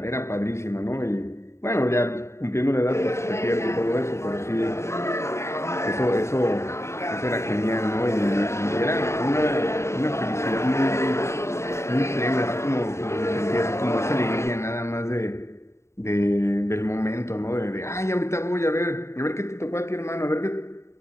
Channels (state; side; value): late; right; 0.13 ms